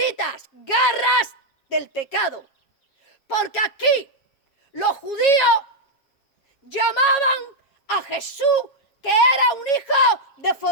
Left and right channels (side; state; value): right; late; 7.3 ms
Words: garras del pecado. Porque aquí los judíos llamaban a Jesús que era un hijo de